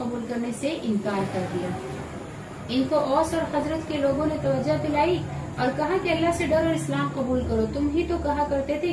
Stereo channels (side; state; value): both; identical; correlation 1.00